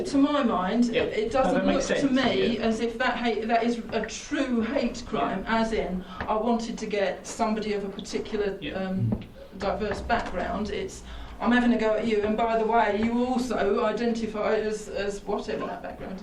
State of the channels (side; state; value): both; identical; correlation 1.00